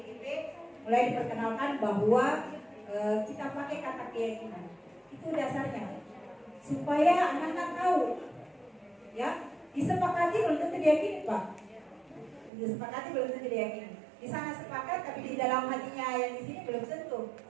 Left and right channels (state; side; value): drops out; left; at 12.5 s